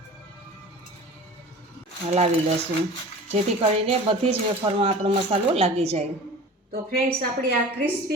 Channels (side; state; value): both; normal; correlation 0.38